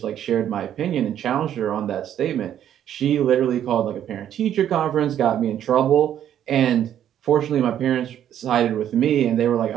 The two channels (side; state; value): left; quieter; 10.4 dB